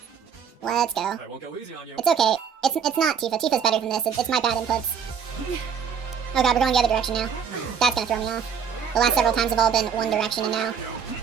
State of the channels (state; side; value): quieter; left; 7.1 dB